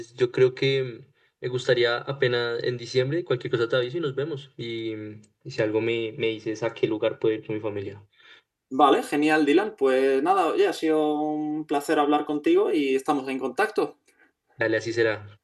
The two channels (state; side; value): identical; both; correlation 1.00